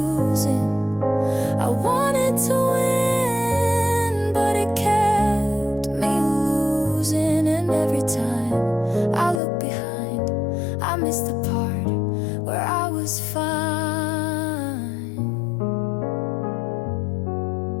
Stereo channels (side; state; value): right; drops out; at 9.4 s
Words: I wanted to win, but it kept me losing. And every time I look behind, I miss the part where I was fine.